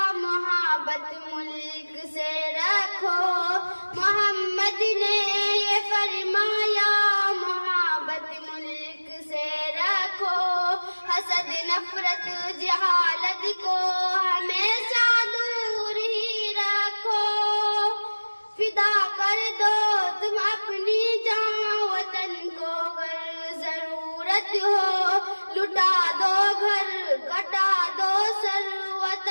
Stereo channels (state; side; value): inverted; both; correlation -1.00